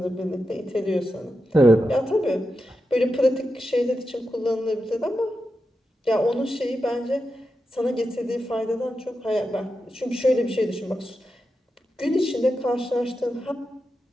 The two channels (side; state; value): both; normal; correlation 0.89